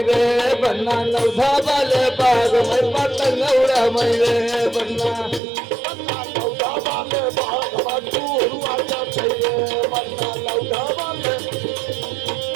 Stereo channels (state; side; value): drops out; left; at 5.4 s